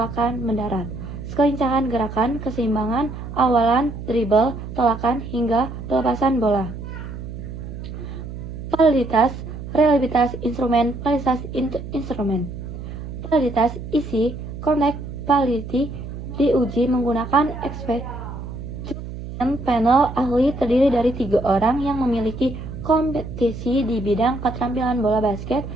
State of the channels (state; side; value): noise; right; hum, 9 dB below the sound